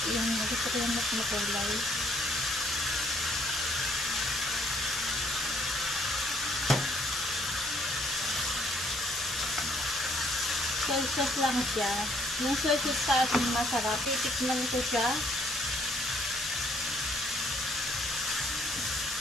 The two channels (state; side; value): normal; both; correlation 0.66